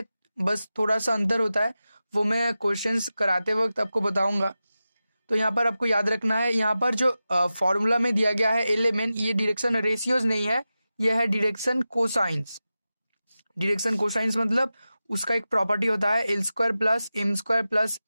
बस थोड़ा सा अंतर होता है, वो मैं क्वेश्चंस कराते वक्त आपको बताऊंगा। तो यहाँ पर आपको याद रखना है, यहाँ पर जो फॉर्मूला में दिया गया है एल एम एन, ये डायरेक्शन रेशियोज नहीं है, यह है डायरेक्शन कोसाइंस। डायरेक्शन कोसाइंस मतलब उसका एक प्रॉपर्टी होता है L square plus M square plus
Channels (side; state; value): both; inverted; correlation -0.93